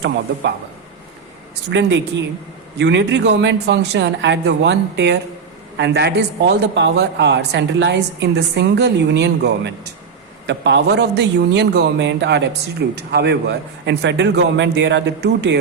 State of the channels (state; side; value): quieter; left; 5.7 dB